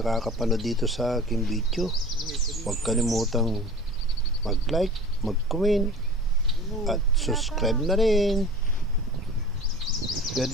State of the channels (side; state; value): both; normal; correlation 0.39